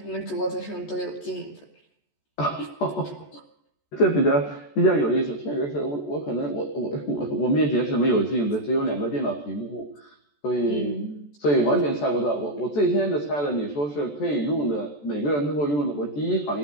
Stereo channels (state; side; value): late; right; 14 ms